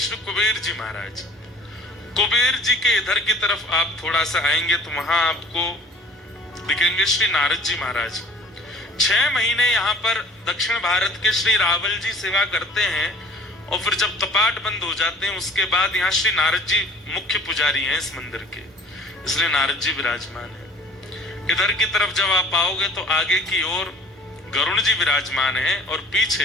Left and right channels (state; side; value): normal; both; correlation 0.50